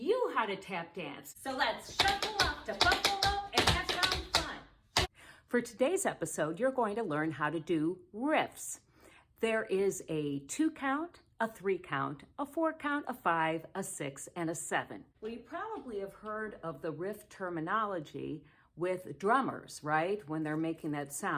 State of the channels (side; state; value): both; identical; correlation 1.00